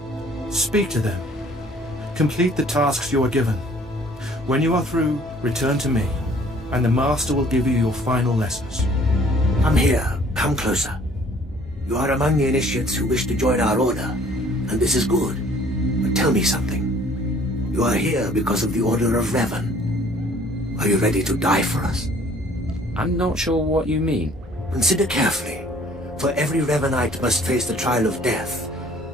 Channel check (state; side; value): normal; both; correlation 0.56